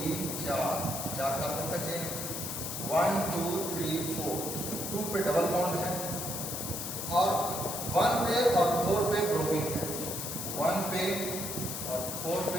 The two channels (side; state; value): left; noise; hiss, 4 dB below the sound